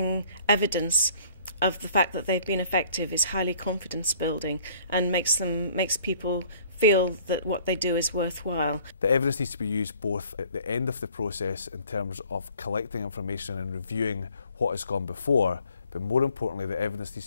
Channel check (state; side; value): inverted; both; correlation -0.56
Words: evidence of the fact that they've been effective is highly confidence building and makes people feel that what they do is worthwhile. The evidence needs to be used both at the end of the process in terms of collecting information and reviewing what has gone before, but more importantly, the evidence needs